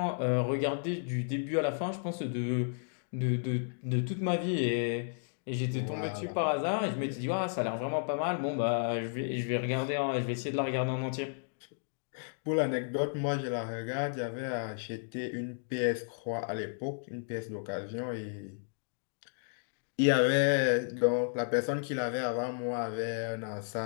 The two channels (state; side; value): silent; right; digital silence